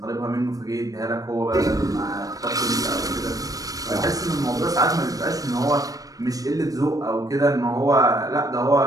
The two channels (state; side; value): late; left; 0.17 ms